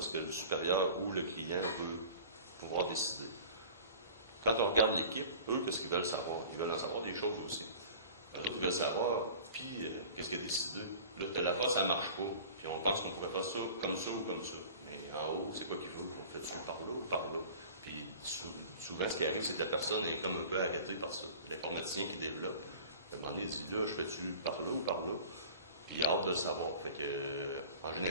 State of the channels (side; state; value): both; inverted; correlation -0.42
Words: que le supérieur ou le client veut pouvoir décider. Quand on regarde l'équipe, eux, qu'est-ce qu'ils veulent savoir? Ils veulent en savoir des choses aussi. Les autres, ils veulent savoir, puis qu'est-ce qu'il a décidé? Là, telle affaire, ça ne marche pas. Puis on pense qu'on pourrait faire ça ou comme ça. Mais en haut, c'est quoi qu'il veut? On fait-tu par là ou par là? Puis souvent, ce qui arrive, c'est que la personne est comme un peu arrêtée par ça. L'informaticien qui développe, à un moment donné, il dit, là, je fais-tu par là ou par là? Puis il a hâte de le savoir. Fait que, en